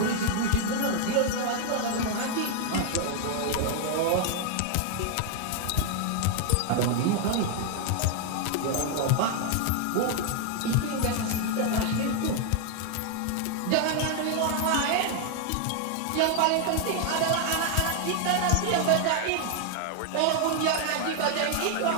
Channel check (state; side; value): different; both; correlation 0.00